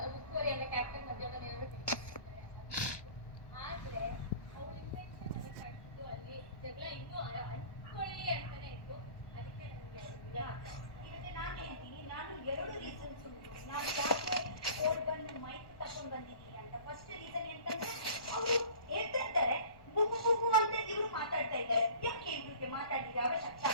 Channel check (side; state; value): right; late; 1.2 ms